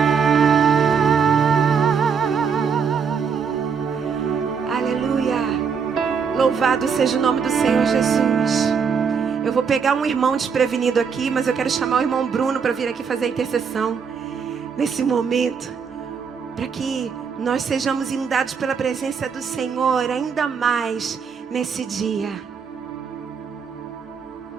aleluia. Louvado seja o nome do Senhor Jesus. Eu vou pegar um irmão desprevenido aqui, mas eu quero chamar o irmão Bruno para vir aqui fazer a intercessão nesse momento, para que nós sejamos inundados pela presença do Senhor ainda mais nesse dia.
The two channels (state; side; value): quieter; left; 6.3 dB